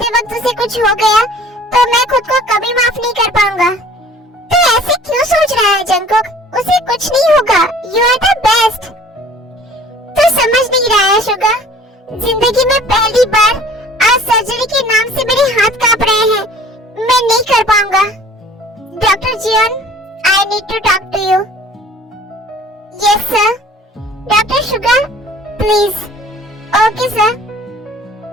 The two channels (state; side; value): normal; both; correlation 0.50